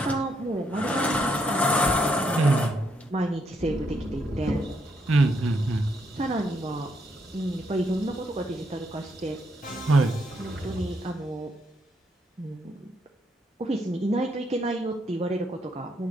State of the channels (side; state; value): both; normal; correlation 0.76